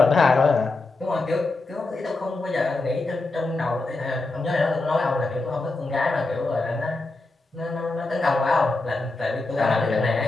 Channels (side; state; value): right; quieter; 3.3 dB